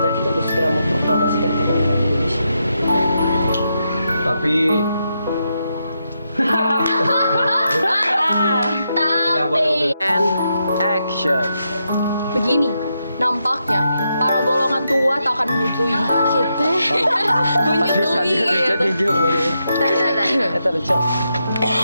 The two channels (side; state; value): both; inverted; correlation -0.83